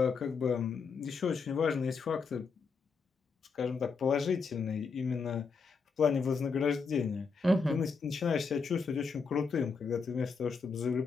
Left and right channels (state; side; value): quieter; right; 5.0 dB